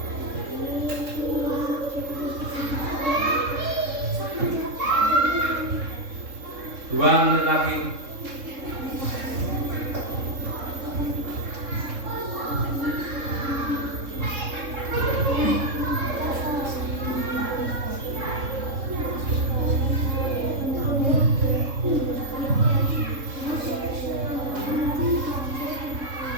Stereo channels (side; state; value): left; late; 3.7 ms